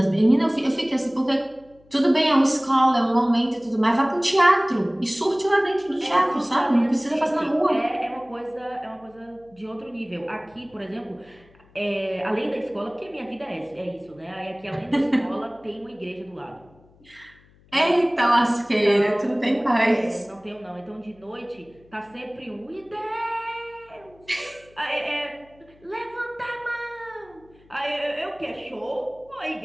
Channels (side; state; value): left; noise; hum, 29 dB below the sound